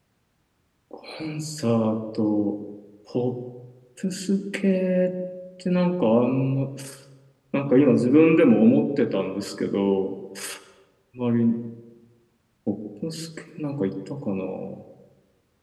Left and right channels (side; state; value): both; identical; correlation 1.00